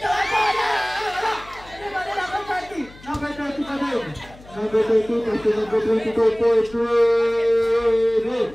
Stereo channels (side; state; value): left; noise; hum, 22 dB below the sound